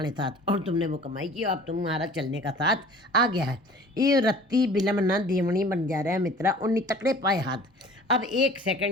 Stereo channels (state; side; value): normal; both; correlation 0.47